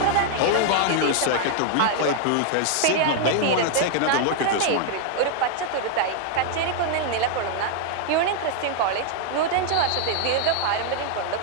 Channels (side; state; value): both; different; correlation 0.00